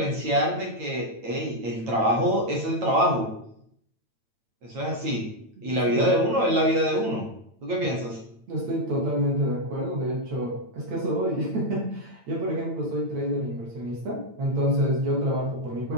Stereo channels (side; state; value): left; late; 8.9 ms